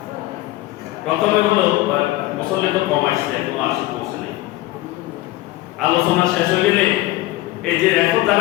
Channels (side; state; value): right; quieter; 17.4 dB